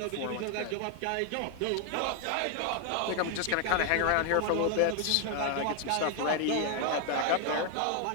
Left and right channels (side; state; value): both; different; correlation 0.01